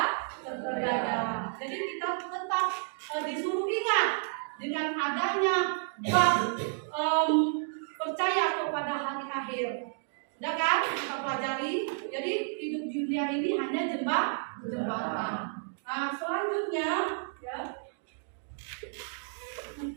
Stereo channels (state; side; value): silent; left; digital silence